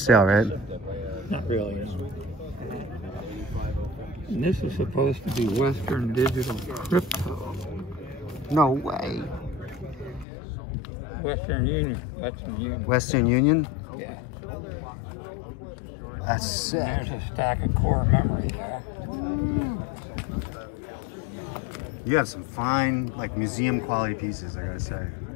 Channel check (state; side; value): drops out; right; at 10.2 s